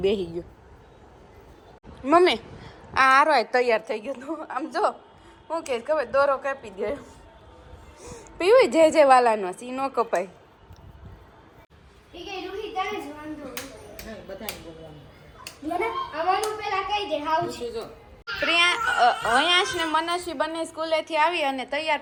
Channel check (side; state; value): both; identical; correlation 1.00